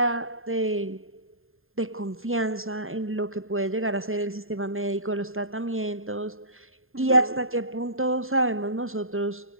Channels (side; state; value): left; late; 0.61 ms